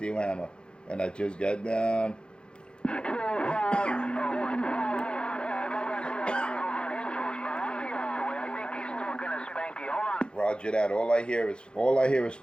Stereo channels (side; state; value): right; late; 0.052 ms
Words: hammer. And I just got down. Roger that. All I hear is